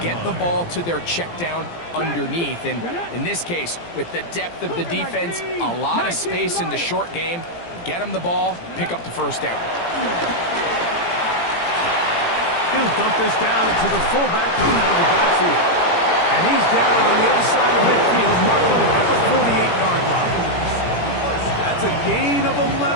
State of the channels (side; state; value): right; late; 17 ms